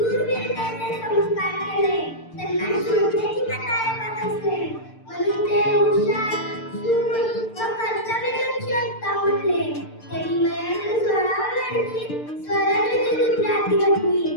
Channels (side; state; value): right; late; 6.7 ms